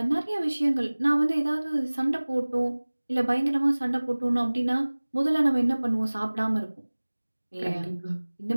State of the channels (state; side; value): inverted; both; correlation -1.00